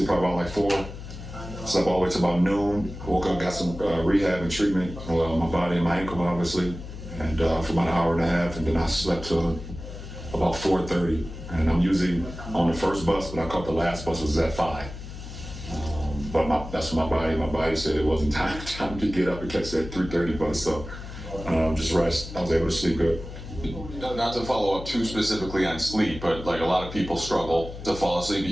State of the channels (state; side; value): noise; left; hum, 11 dB below the sound